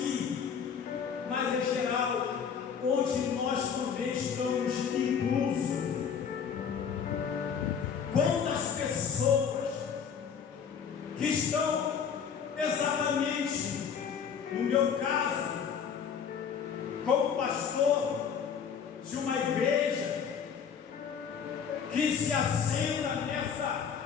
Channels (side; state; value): right; quieter; 7.0 dB